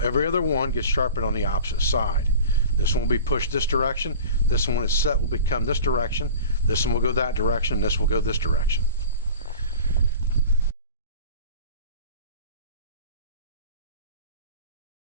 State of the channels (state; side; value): inverted; both; correlation -0.38